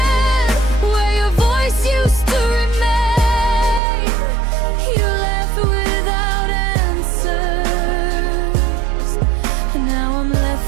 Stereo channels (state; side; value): drops out; left; at 3.8 s